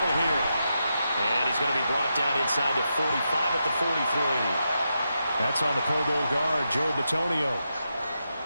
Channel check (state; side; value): inverted; both; correlation -0.86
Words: here. And he's going to be brought down inside the 45 at the 43. That's on the Pro Bowl guard, Joe Bitonio.